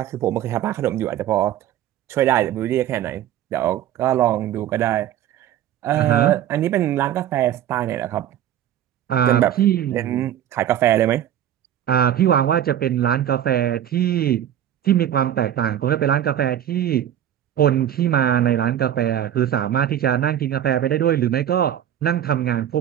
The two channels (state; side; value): quieter; left; 11.1 dB